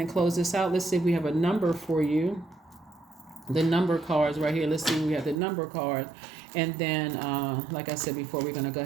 close this out. Let's see if we have a number for you. The number cards right here. Let's see, we have the number card. And then, like I said before, we're going to go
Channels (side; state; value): left; drops out; at 5.4 s